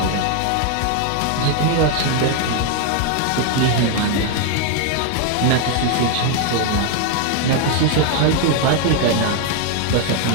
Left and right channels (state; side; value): different; both; correlation 0.00